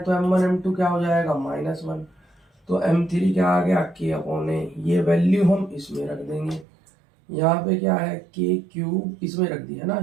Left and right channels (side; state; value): left; drops out; at 6.7 s